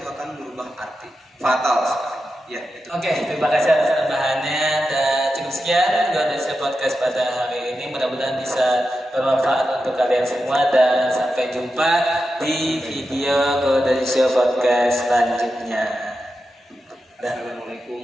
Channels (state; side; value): normal; both; correlation 0.90